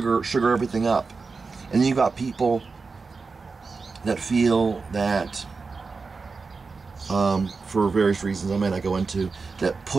everything up. And you got people that feel that, for various reasons I may not go into, that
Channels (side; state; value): left; quieter; 4.4 dB